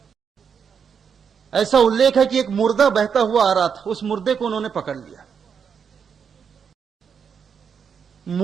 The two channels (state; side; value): quieter; left; 6.8 dB